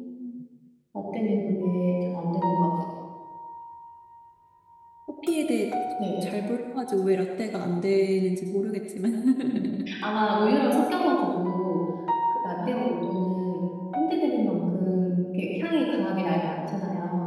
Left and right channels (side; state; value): both; identical; correlation 1.00